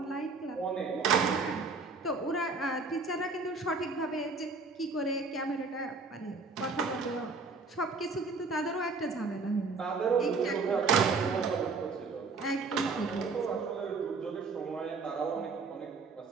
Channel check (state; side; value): quieter; left; 4.2 dB